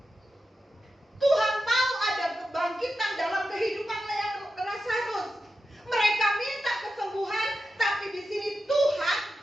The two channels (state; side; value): normal; both; correlation 0.90